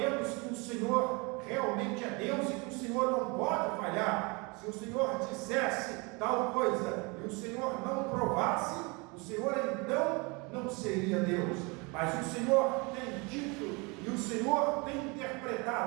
que o Senhor realmente é Deus e que o Senhor não pode falhar. Se o Senhor dissesse tal coisa e o Senhor não provasse, o Senhor então não seria Deus. Mas o Senhor tem dito e o Senhor tem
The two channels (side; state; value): left; quieter; 28.7 dB